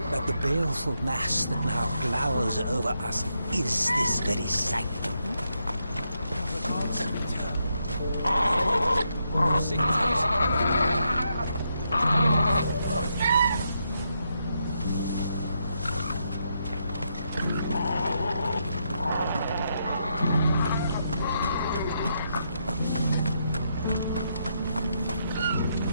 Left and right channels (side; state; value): both; inverted; correlation -0.80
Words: that the baleful mass that now glowers over us is this very sanctum?